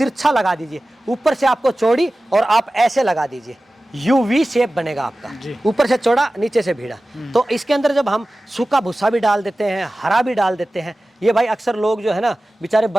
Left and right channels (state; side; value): normal; both; correlation 0.96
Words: लगा दीजिए, ऊपर से आपको चौड़ी, और आप ऐसे लगा दीजिए, यूवी शेप बनेगा आपका, ऊपर से चौड़ा नीचे से भीड़ा। तो इसके अंदर जब हम सूखा भूसा भी डाल देते हैं, हरा भी डाल देते हैं, ये भाई अक्सर लोग जो है ना बेचारे